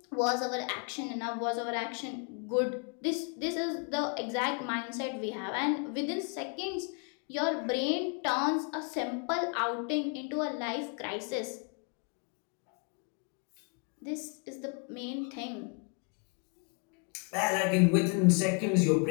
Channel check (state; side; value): quieter; right; 37.0 dB